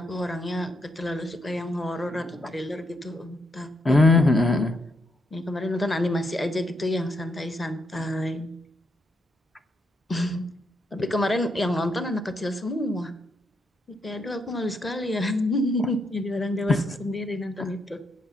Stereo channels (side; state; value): both; normal; correlation 0.78